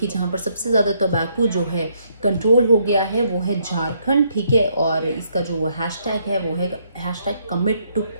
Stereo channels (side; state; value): both; inverted; correlation -0.72